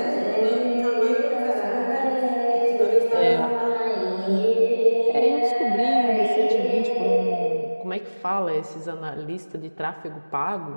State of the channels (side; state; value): both; inverted; correlation -1.00